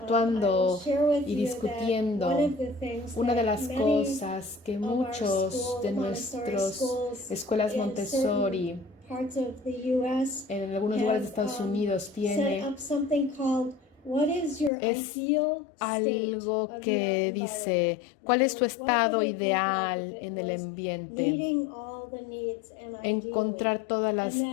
y discutiendo. Una de las cosas que muchos de nuestras escuelas Montessori en algunos lugares de Estados Unidos tiene es algo que dice ¿cuál es tu estado ideal en el ambiente? Encontrar todas las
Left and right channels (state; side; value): drops out; right; at 14.7 s